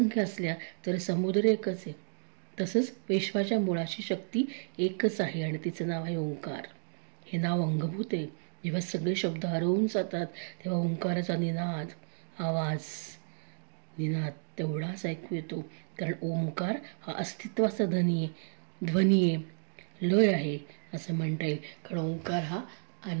असल्या तरी समुद्र एकच आहे. तसंच विश्वाच्या मुळाची शक्ती एकच आहे आणि तिचं नाव आहे ओंकार. हे नाव अंगभूत आहे. जेव्हा सगळे शब्द हरवून जातात तेव्हा ओंकाराचा निनाद, आवाज, निनाद तेवढाच ऐकू येतो. कारण ओंकार हा अस्तित्वाचा ध्वनी आहे, लय आहे असं म्हणता येईल. कारण ओंकार हा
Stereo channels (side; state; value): left; silent; digital silence